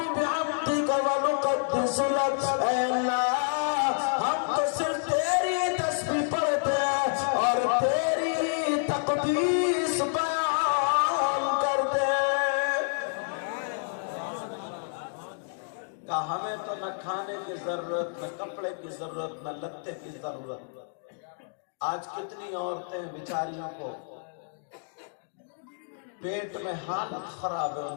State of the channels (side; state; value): right; silent; digital silence